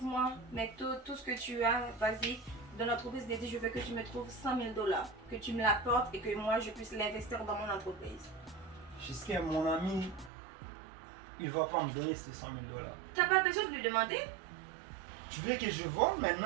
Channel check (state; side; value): drops out; left; at 10.3 s